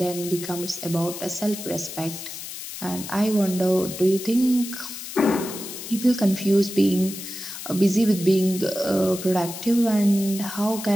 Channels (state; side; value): noise; left; hiss, 10 dB below the sound